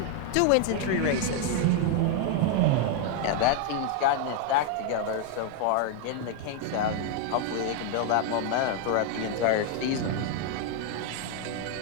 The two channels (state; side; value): different; both; correlation 0.00